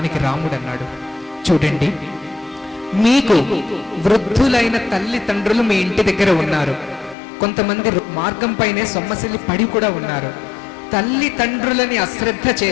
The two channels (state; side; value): drops out; right; at 7.2 s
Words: రాముడు అన్నాడు, చూడండి, మీకు వృద్ధులైన తల్లిదండ్రులు మీ ఇంటి దగ్గర ఉన్నారు. కొంతమంది మార్గం పైనే సొమ్మసిల్లి పడి కూడా ఉన్నారు. తల్లిదండ్రులని అశ్రద్ధ